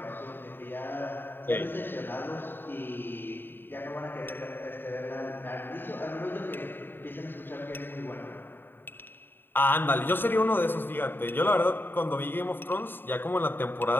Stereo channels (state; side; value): late; right; 0.096 ms